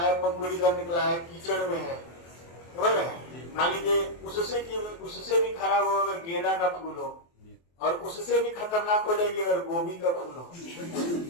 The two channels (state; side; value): late; right; 23 ms